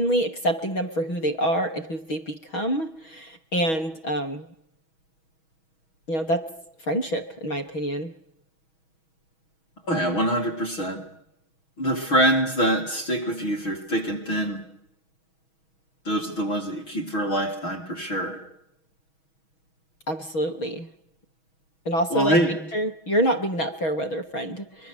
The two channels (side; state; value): right; late; 6.3 ms